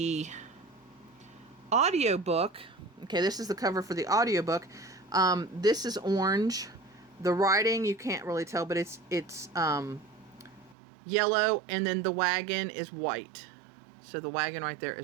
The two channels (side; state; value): left; drops out; at 10.8 s